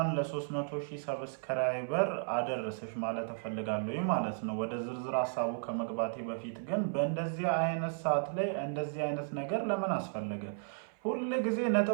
ለ300,000 ሰብስክራይበር አደረሰሽ ማለት እፈልጋለሁ ማለት ነው። ወደ ዝርዝር ሐሳቡ ከመግባቴ በፊት ግን በእንደዚህ አይነት ሰዓት ላይ እንደዚህ አይነት ነገር ለምን አስፈለገ? ሁሉ ጊዜ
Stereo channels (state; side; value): silent; left; 55 dB below the other